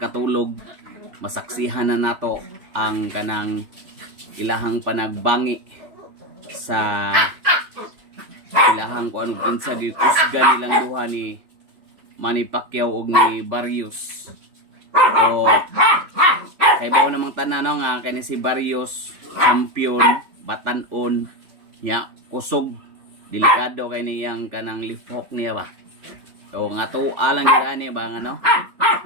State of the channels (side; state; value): left; late; 3.4 ms